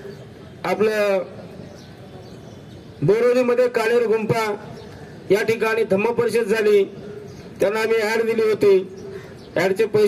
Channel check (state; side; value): identical; both; correlation 1.00